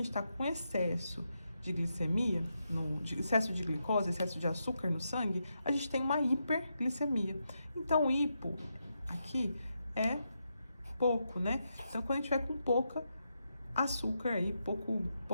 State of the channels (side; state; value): both; inverted; correlation -0.84